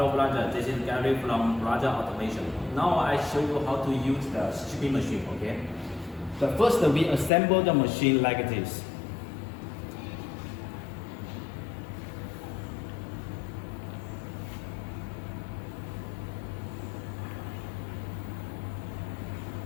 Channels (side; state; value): right; drops out; at 7.3 s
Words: brother, this is Gary from Brother Automation. Now I show you how to use the stripping machine, okay? The first we assemble the machine like this.